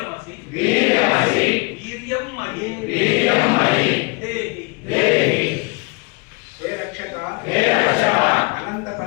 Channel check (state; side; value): quieter; right; 30.2 dB